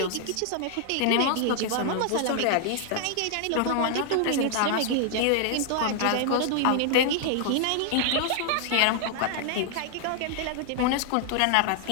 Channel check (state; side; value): different; both; correlation 0.00